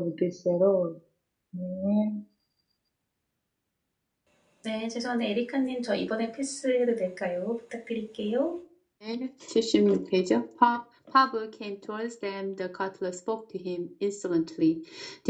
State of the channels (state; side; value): identical; both; correlation 1.00